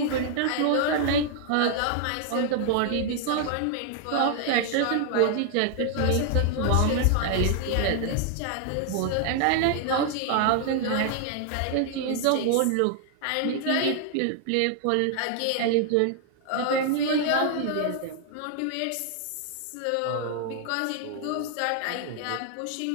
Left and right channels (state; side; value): different; both; correlation 0.00